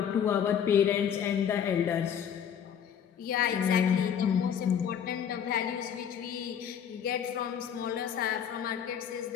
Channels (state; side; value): quieter; right; 8.4 dB